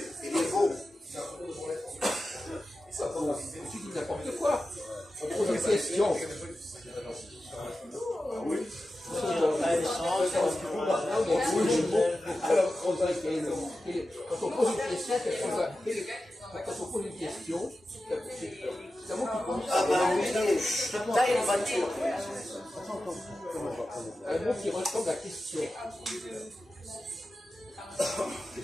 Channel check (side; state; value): both; normal; correlation 0.93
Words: Il est beau. Tu dis n'importe quoi. On pose une question. Quand on pose une question, c'est un mot qui compte. Ah, ben oui, t'as une voiture. Un mot qui ressemble à question. Quel